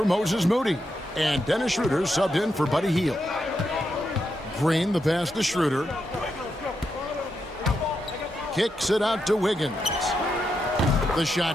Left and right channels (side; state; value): both; normal; correlation 0.84